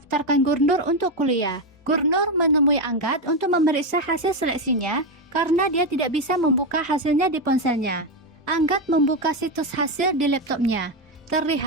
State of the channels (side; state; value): both; normal; correlation 0.09